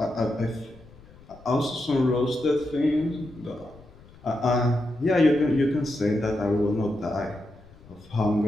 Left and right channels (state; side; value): noise; left; rumble, 23 dB below the sound